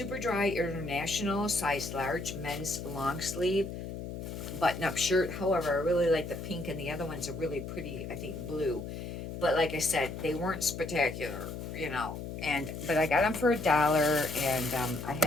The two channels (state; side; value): noise; left; hum, 7 dB below the sound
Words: Dry International, size large, men's long sleeve, button-up shirt. However, I really like the pink, and the other ones are really pretty, I think, blue. But like I said, they weren't spectacular, but I got them for $1, and I